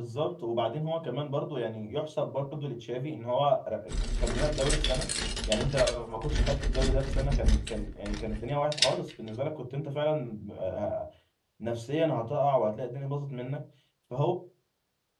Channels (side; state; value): both; identical; correlation 1.00